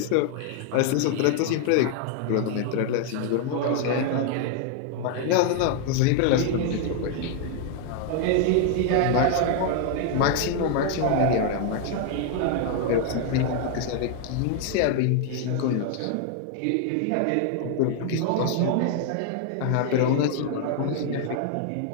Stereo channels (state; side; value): different; both; correlation 0.00